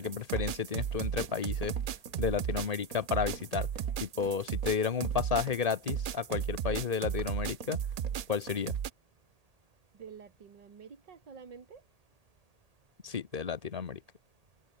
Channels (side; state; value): left; late; 1.8 ms